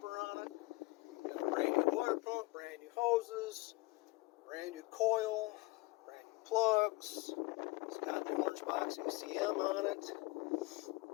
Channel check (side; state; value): right; quieter; 22.1 dB